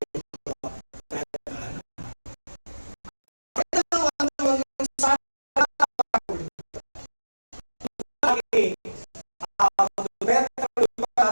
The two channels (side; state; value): both; inverted; correlation -1.00